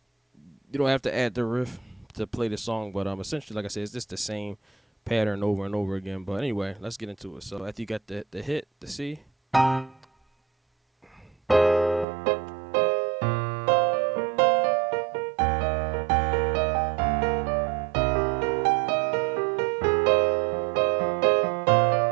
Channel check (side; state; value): left; drops out; at 12.1 s